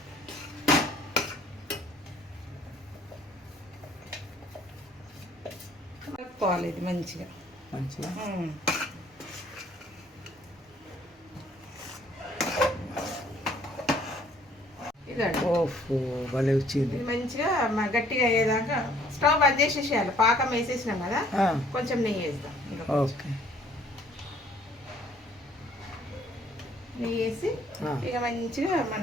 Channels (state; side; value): normal; both; correlation 0.60